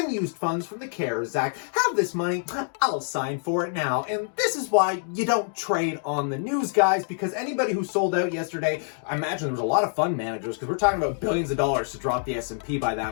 funds from the CARES Act. Have this money, I'll sign for it now." And this is why you don't trade on the news, guys, because anybody who sold out yesterday, I imagine there was a lot of fund managers, because we're talking about billions of dollars to drop the S&P by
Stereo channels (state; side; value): silent; right; digital silence